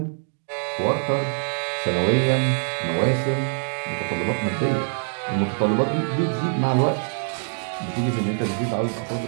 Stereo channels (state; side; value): silent; left; digital silence